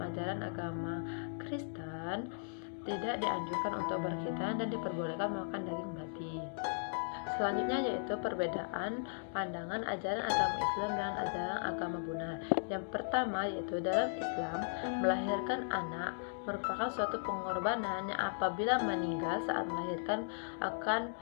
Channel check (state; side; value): silent; right; digital silence